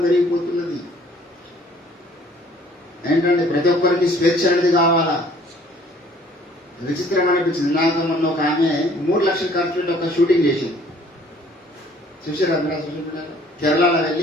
పెరిగిపోతున్నది. ఏంటంటే ప్రతి ఒక్కరికి స్వేచ్ఛ అనేది కావాలా. విచిత్రం అనిపించింది. నాకు మొన్న ఒక ఆమె 3 లక్షలు ఖర్చు పెట్టి ఒక షూటింగ్ చేసింది. చూసారా మీరు? కేరళలో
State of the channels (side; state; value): both; normal; correlation 0.56